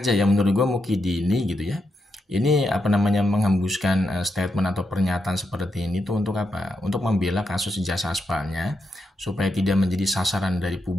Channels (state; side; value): normal; both; correlation 0.84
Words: ya menurut gue Mukidi ini gitu ya. Ini menghembuskan statement atau pernyataan seperti ini tuh untuk apa? Untuk membela kasus ijazah aspalnya supaya tidak menjadi sasaran dari